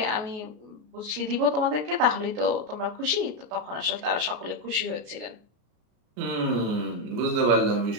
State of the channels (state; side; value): late; left; 33 ms